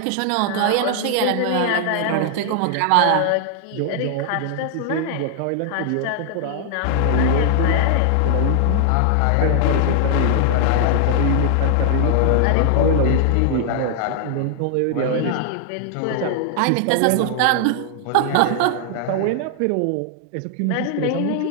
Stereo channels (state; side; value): different; both; correlation 0.00